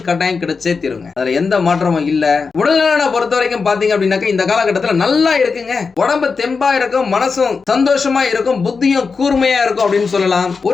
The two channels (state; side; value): quieter; right; 4.9 dB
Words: கட்டாயம் கிடைச்சே தீருங்க. அதுல எந்த மாற்றமும் இல்ல. உடல்நலனை பொறுத்த வரைக்கும் பாத்தீங்க அப்படின்னாக்க இந்த காலகட்டத்துல நல்லா இருக்குங்க. உடம்பு தெம்பா இருக்கும், மனசும் சந்தோஷமா இருக்கும், புத்தியும் கூர்மையா இருக்கும் அப்படின்னு சொல்லலாம்.